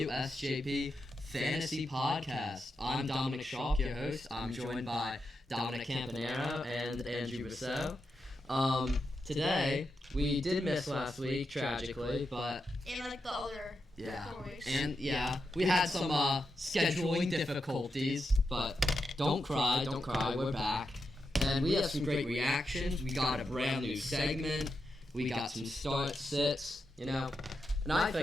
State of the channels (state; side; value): normal; both; correlation 0.87